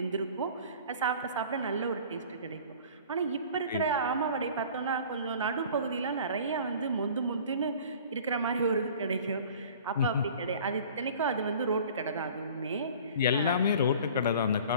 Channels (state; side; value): inverted; both; correlation -0.46